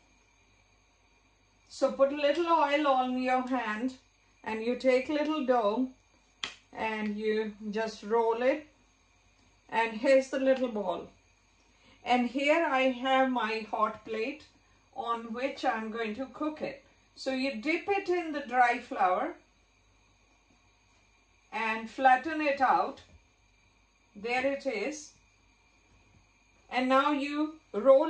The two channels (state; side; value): identical; both; correlation 1.00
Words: So put a little oil on your hand and you take little dough and you just roll it, and here's the little ball. And here I have my hot plate on which I'm going to cook it. So you dip it in the dry flour and flatten it out. There it is. And now you